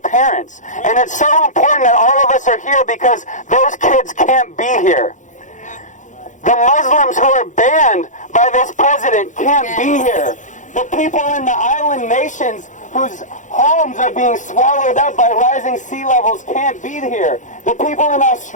parents. And it's so important that all of us are here because those kids can't be here. The Muslims who are banned by this president can't be here. The people in the island nations whose homes are being swallowed up by rising sea levels can't be here. The people in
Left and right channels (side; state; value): right; late; 0.36 ms